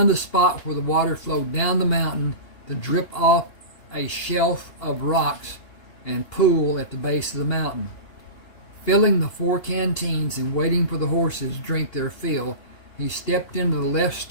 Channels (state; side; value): late; right; 2.8 ms